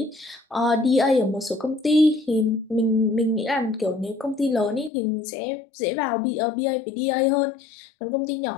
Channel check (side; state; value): right; drops out; at 4.9 s